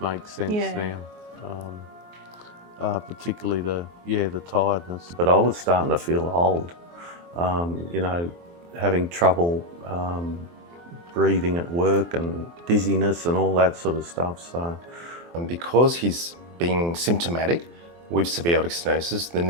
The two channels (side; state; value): left; late; 23 ms